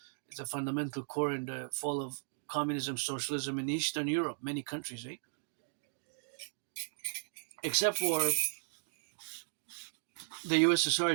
it's a fundamental core in the fall of communism, socialism in Eastern Europe, many countries, except for the USSR.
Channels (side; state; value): left; silent; digital silence